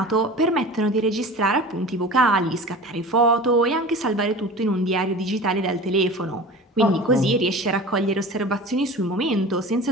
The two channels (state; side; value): normal; both; correlation 0.36